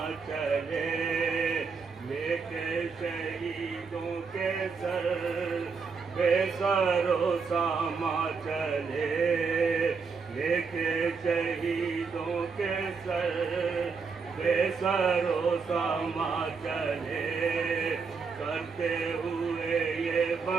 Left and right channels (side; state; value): left; quieter; 5.1 dB